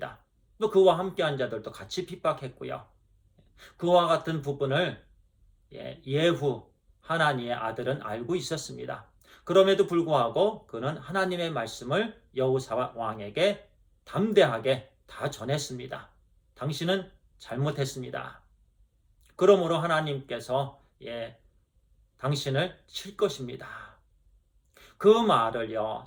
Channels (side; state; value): both; identical; correlation 1.00